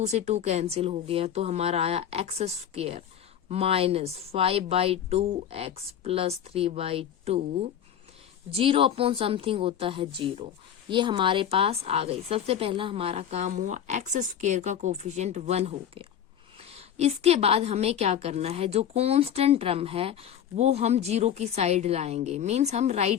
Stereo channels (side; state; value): right; quieter; 9.5 dB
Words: से 2 कैंसिल हो गया, तो हमारा आया x² - 5/2x + 3/2, 0 अपॉन समथिंग होता है 0। ये हमारे पास आ गई। सबसे पहला हमारा काम हुआ, x² का कोफिशिएंट 1 हो गया। इसके बाद हमें क्या करना है, जो कांस्टेंट टर्म है वो हम 0 की साइड लाएंगे, मींस हम